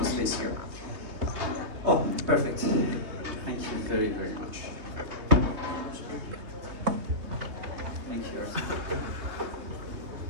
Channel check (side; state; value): left; late; 3.2 ms